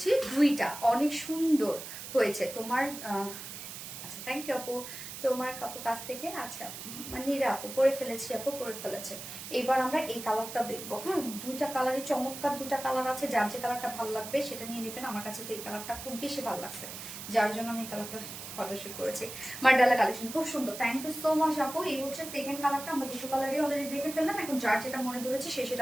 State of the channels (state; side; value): noise; right; hiss, 10 dB below the sound